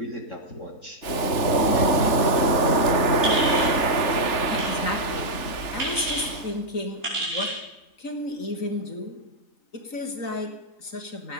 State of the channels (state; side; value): late; right; 3.4 ms